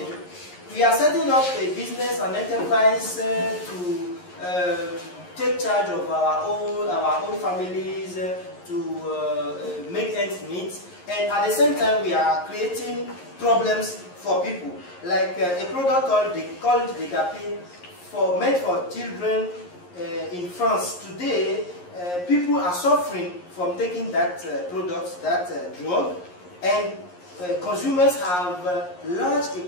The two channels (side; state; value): right; late; 11 ms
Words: we are setting up a business, an enterprise to take charge of our own families, to make ends meet, and at the same time we are creating problems for people. Like a product called Decapin, made for children in France. Today, people are suffering from taking that product, that drug, and consumers have lodged a